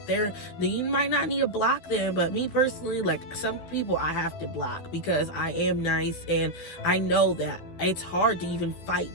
you might not need to block them, but me personally, like, some people I have to block because I am nice, and I know that it's hard to even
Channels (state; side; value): late; right; 12 ms